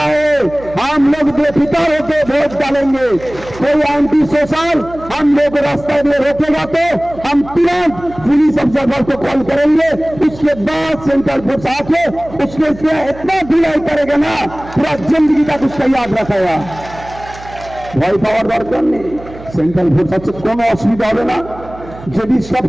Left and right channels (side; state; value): right; noise; hum, 17 dB below the sound